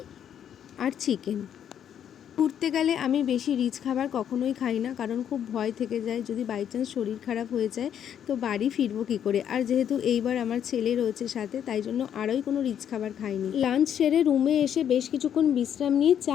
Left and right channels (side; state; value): right; quieter; 9.3 dB